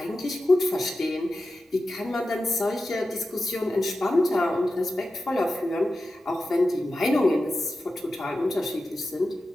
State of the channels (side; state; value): both; normal; correlation 0.92